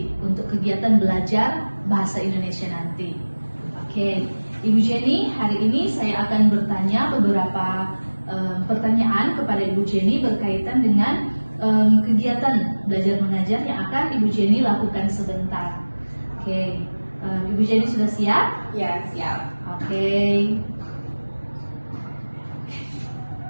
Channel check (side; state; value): both; inverted; correlation -1.00